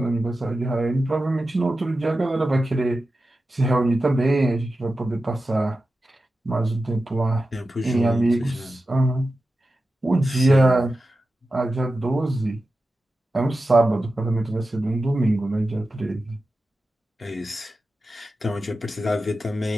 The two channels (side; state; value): both; normal; correlation 0.92